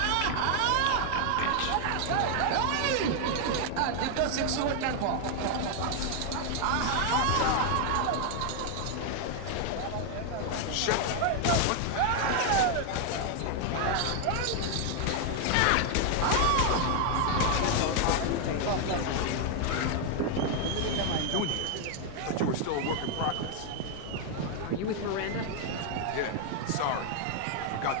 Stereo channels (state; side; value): different; both; correlation 0.00